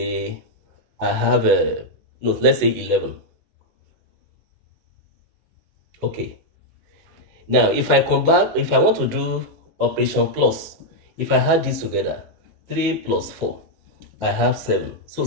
I have a no, let's say 11. Okay. Now, if I want to do operation plus, if I add this together, 3 plus 4, I have 7. So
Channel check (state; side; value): late; left; 18 ms